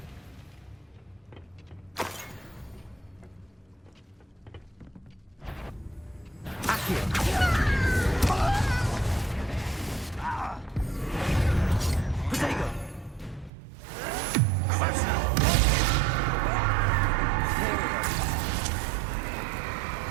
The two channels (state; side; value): drops out; left; at 13.5 s